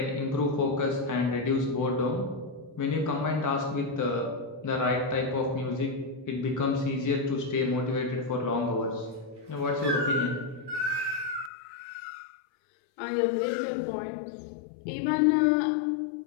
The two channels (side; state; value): right; drops out; at 11.5 s